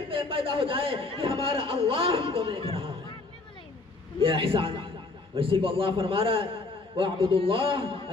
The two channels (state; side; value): quieter; right; 3.5 dB